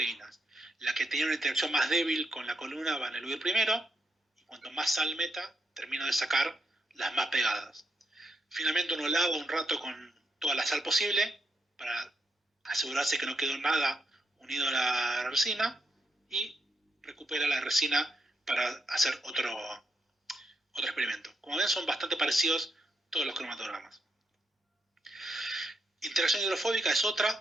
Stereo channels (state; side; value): normal; both; correlation 0.81